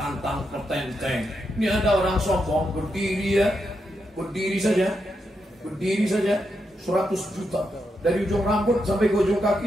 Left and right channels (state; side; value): normal; both; correlation 0.84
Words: petenteng. Ini ada orang sombong berdiri ya, berdiri saja 100 juta, dari ujung rambut sampai ke ujung